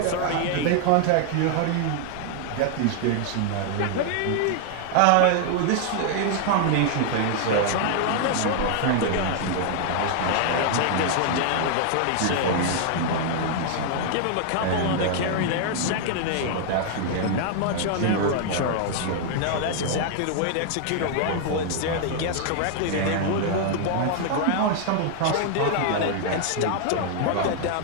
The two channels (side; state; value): both; different; correlation 0.00